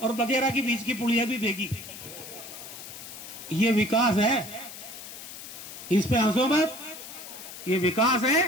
और बगेरा के बीच की पुलिया भी भेगी। ये विकास है, इस पे हंसो मत, ये विकास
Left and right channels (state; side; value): noise; left; hiss, 12 dB below the sound